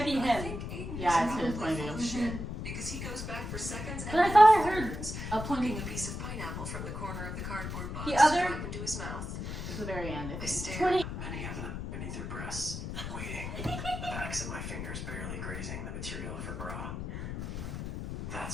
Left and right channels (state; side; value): noise; left; rumble, 6 dB below the sound